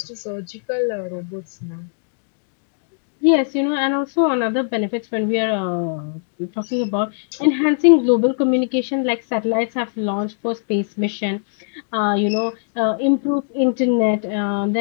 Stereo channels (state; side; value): silent; right; digital silence